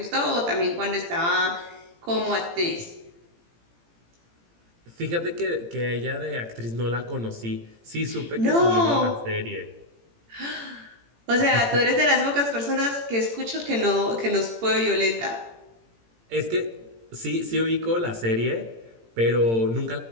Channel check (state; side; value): late; left; 18 ms